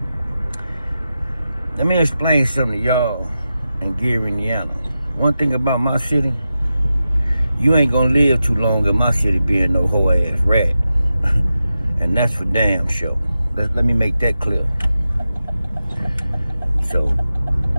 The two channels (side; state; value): both; inverted; correlation -0.91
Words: Let me explain something to y'all in Gary, Indiana. One thing about my city, you ain't gonna live too long in my city being no hoe ass rat. And that's for damn sure. Let me make that clear. So,